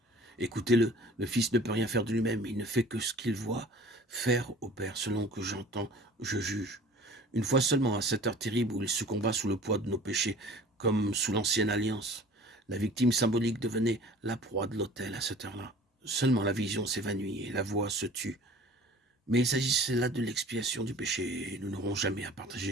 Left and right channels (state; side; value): normal; both; correlation 0.46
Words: Écoutez-le, le Fils ne peut rien faire de lui-même, il ne fait que ce qu'il voit faire au Père, selon que j'entends, je juge. Une fois seulement, à cette heure terrible où il succomba sous le poids de nos péchés, comme sous l'ancienne alliance, la victime symbolique devenait la proie de l'autel à cette heure-là. Seulement la vision s'évanouit et la voix se tut. Mais il s'agissait là de l'expiation du péché, et nous n'aurons jamais à